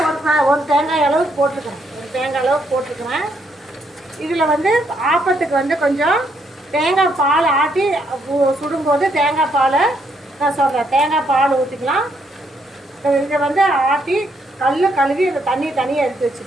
ஒரு தேங்காய் அளவுக்கு போட்டிருக்கிறேன். இதில் வந்து ஆப்பத்துக்கு வந்து கொஞ்சம் தேங்காய் பால் ஆட்டி சுடும்போது தேங்காய் பாலை நான் சொல்கிறேன், தேங்காய் பால் ஊற்றிக்கலாம். இதை வந்து ஆட்டி கழுவி அந்த தனியாக எடுத்து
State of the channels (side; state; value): both; normal; correlation 0.74